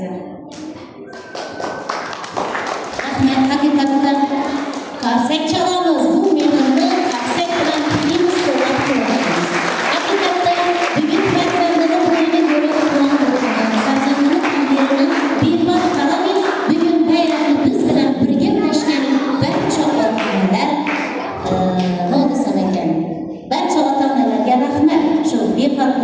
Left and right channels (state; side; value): identical; both; correlation 1.00